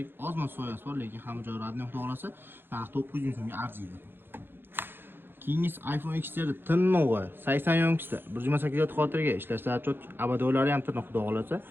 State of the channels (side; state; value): left; late; 0.10 ms